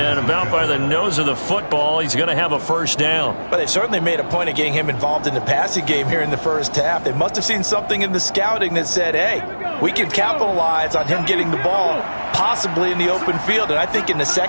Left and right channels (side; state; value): both; inverted; correlation -1.00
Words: about by the nose of the football, he's going to have a 1st down. But they've certainly made a point of getting him involved in the passing game here in the first half. They must have seen something in the scouting that said, hey, we can capitalize on him getting the ball possibly in the open field. And I think in the